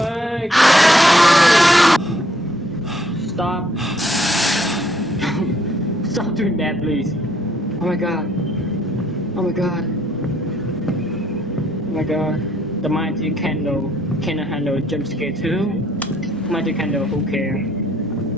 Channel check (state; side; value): normal; both; correlation 0.67